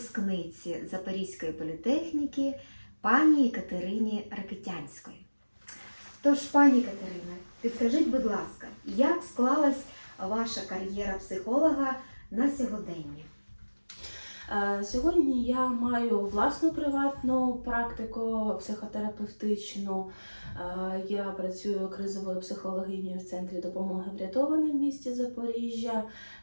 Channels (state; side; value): inverted; both; correlation -1.00